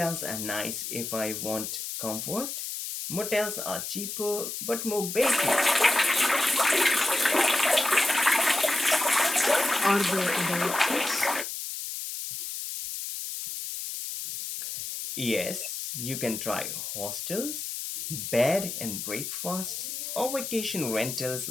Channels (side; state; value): left; noise; hiss, 6 dB below the sound